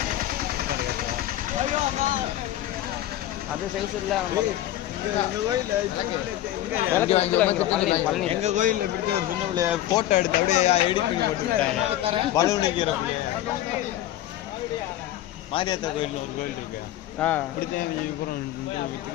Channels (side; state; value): right; quieter; 13.6 dB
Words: அது சைஸ் இல்ல. எங்க கோயில்ல பிடிச்ச ஒரு சின்ன பிள்ளைய போட்டோ எடுத்து அப்படியே எடிட் போட்டு பலூனுக்கு மாரியாத்தா கோயில் ஒரு கோயில் இருக்கு.